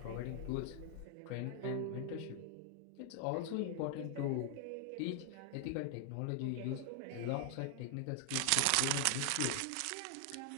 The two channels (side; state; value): both; different; correlation 0.00